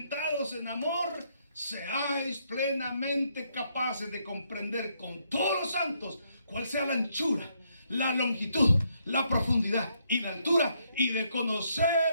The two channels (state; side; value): inverted; both; correlation -0.74